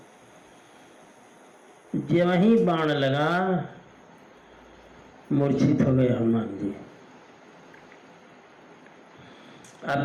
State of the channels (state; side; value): identical; both; correlation 1.00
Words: जब वही बाण लगा, मूर्छित हो गए हनुमान जी। अब